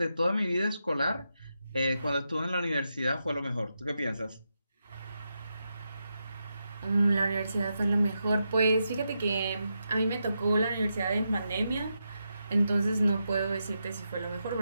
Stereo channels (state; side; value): inverted; both; correlation -0.86